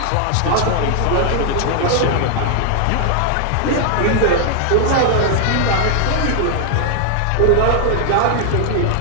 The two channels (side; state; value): both; different; correlation 0.00